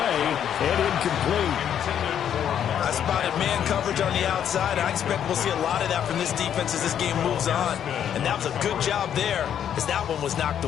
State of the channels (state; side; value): quieter; right; 9.4 dB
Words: and incomplete. I spotted man coverage on the outside. I expect we'll see a lot of that from this defense as this game moves on. And that was a good job there as that one was knocked